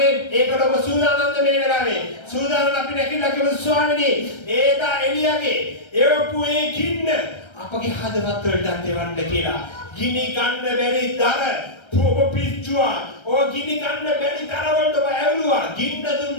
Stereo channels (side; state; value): right; late; 1.3 ms